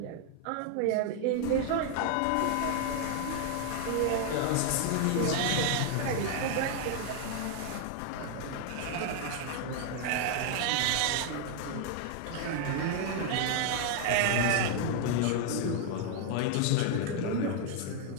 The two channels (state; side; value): different; both; correlation 0.00